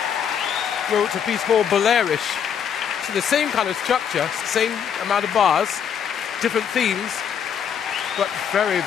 wrote a piece called Bolerish. So the same kind of structure, same amount of bars, different themes, but very,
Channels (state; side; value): quieter; right; 8.0 dB